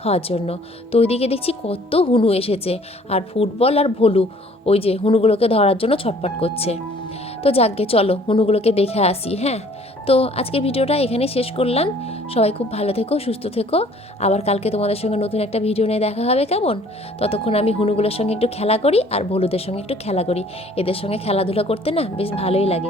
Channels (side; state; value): both; normal; correlation 0.56